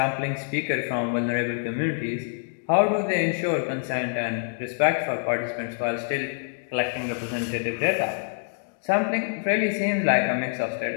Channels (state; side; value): silent; right; digital silence